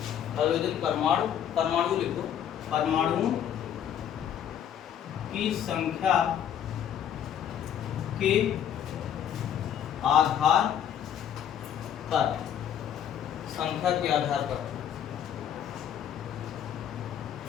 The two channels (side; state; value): right; quieter; 9.6 dB